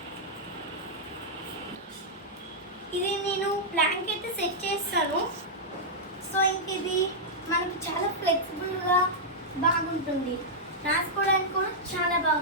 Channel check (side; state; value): both; normal; correlation -0.08